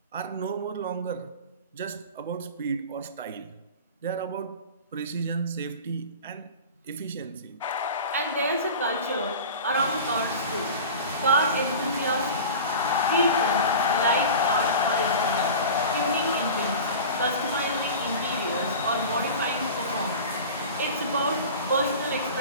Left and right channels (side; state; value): both; inverted; correlation -0.34